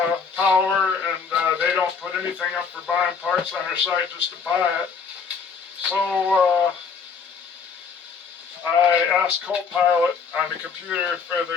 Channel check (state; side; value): quieter; right; 5.7 dB